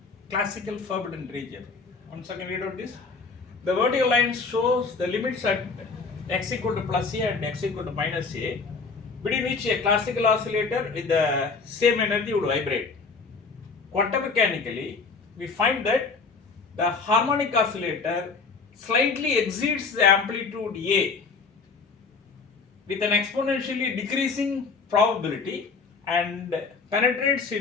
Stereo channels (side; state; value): right; quieter; 4.6 dB